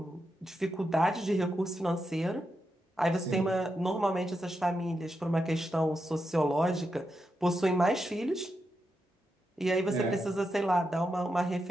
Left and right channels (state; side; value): normal; both; correlation 0.86